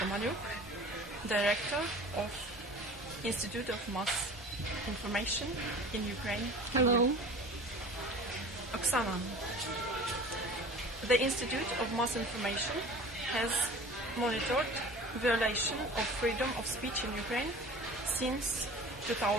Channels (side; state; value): both; normal; correlation 0.41